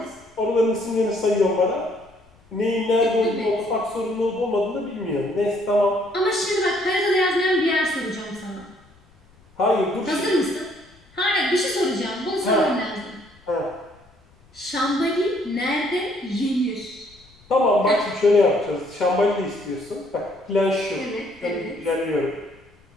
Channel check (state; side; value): noise; left; rumble, 29 dB below the sound